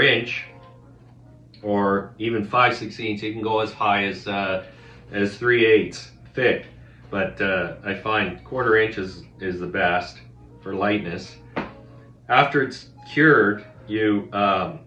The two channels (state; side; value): identical; both; correlation 1.00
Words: inch or even 5/16, you can go as high as 3/8 thick. But I find 1/4 inch is the best for lightness. After it's cured, you